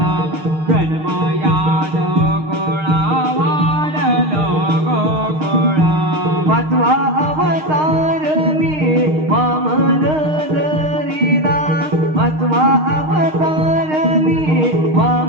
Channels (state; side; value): late; left; 6.5 ms